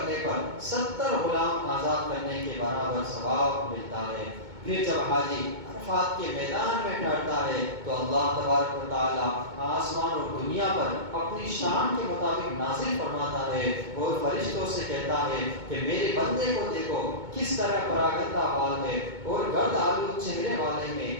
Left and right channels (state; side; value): late; left; 2.2 ms